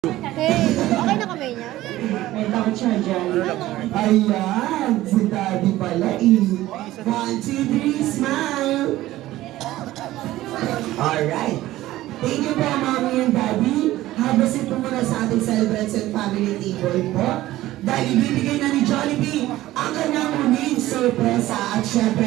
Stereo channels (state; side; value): quieter; left; 15.8 dB